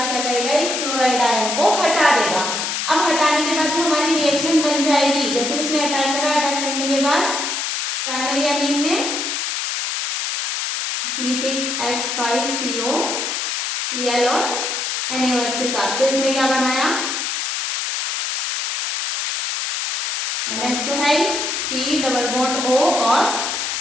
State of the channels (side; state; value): left; noise; hiss, 2 dB below the sound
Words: क्या करेगा, इस क्लोराइड आयन को हटा देगा। अब हटाने के बाद जो हमारी रिएक्शन बन जाएगी, जैसे उसने अटैक करा, अटैक करने के बाद प्राइमरी एमीन ने C6H5CO Cl और NaOH के साथ, तो इसने क्या बनाया, NH तो है, C डबल बॉन्ड O और